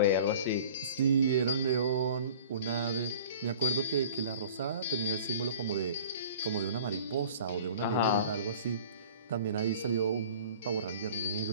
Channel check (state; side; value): inverted; both; correlation -0.45